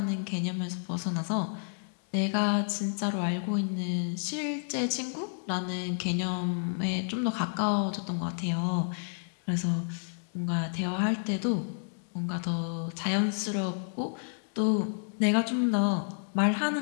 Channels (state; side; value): silent; right; digital silence